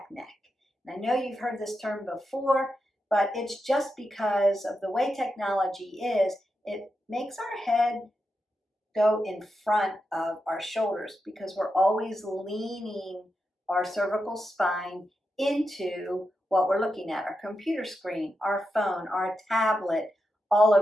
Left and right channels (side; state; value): both; normal; correlation 0.87